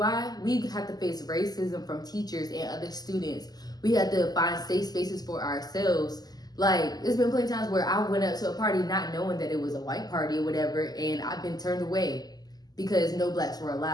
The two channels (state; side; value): late; right; 0.19 ms